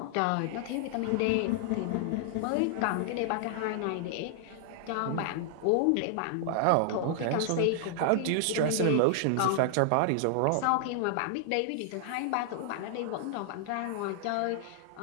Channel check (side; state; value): both; different; correlation -0.01